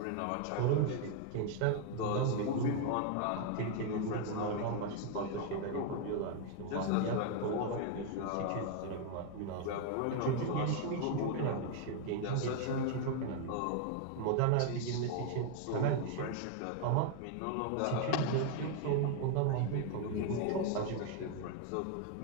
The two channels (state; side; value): different; both; correlation 0.00